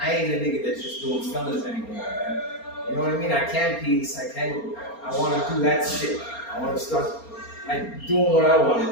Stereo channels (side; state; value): right; late; 4.3 ms